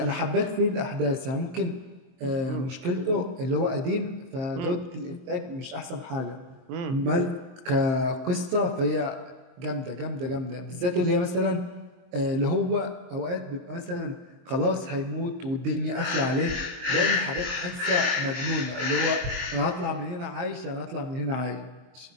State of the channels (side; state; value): left; late; 23 ms